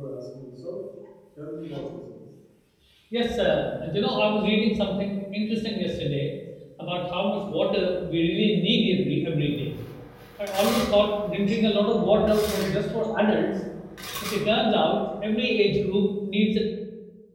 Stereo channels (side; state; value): both; identical; correlation 1.00